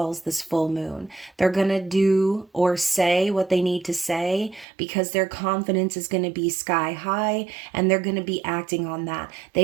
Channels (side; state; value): left; drops out; at 4.7 s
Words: this full moon. They're going to do or say what they need to say because their confidence is going to be sky high and they're going to be acting on that.